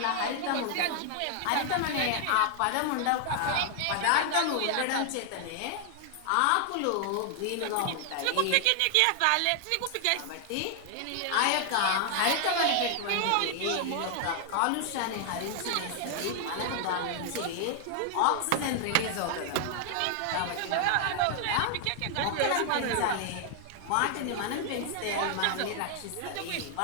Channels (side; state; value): both; different; correlation 0.00